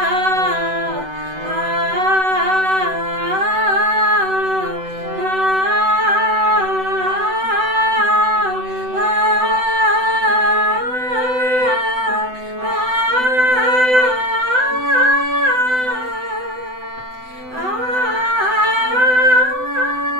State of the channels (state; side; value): late; left; 7.9 ms